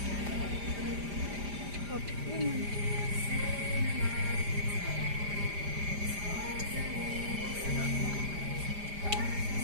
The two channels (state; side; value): late; left; 5.0 ms